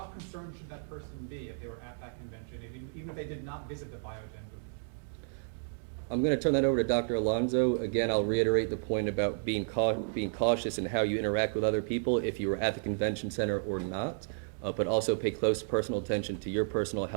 concerned should that person be if they were at that convention, even if they did not visit the Biogen booth? I'm going to turn that over to Dr. Alonso. Again, I'll reiterate the point about being cautious in how you interact with other people if you were at the convention center or not, but also pay close personal attention to your personal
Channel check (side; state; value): left; silent; digital silence